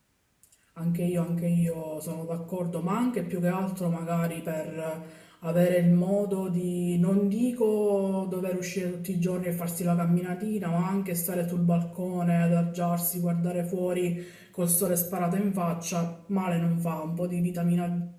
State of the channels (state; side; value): identical; both; correlation 1.00